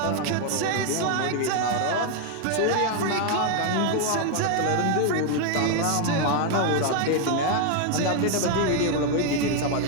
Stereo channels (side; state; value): both; different; correlation 0.01